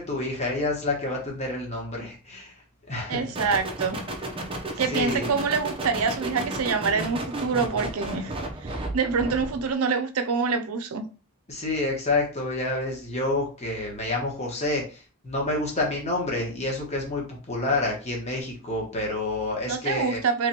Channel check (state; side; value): normal; both; correlation -0.03